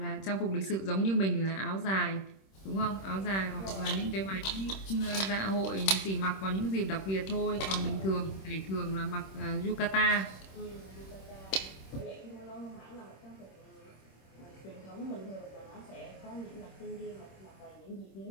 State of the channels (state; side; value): late; right; 26 ms